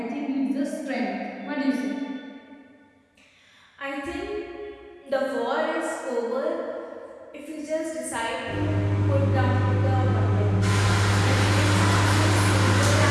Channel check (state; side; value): identical; both; correlation 1.00